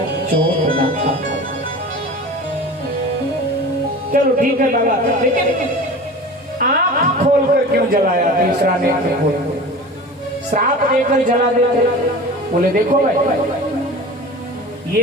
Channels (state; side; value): normal; both; correlation 0.36